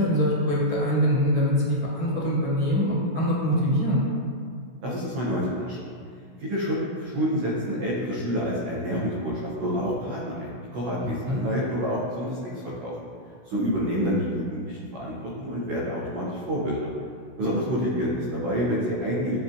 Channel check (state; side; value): late; left; 16 ms